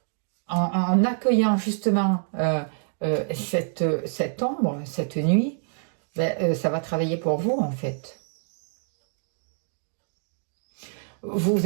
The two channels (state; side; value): silent; left; digital silence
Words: En accueillant justement cette ombre, cette nuit, ça va travailler pour vous en fait. Vous